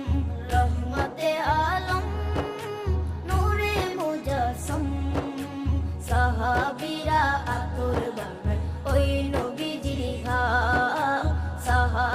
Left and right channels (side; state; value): both; identical; correlation 1.00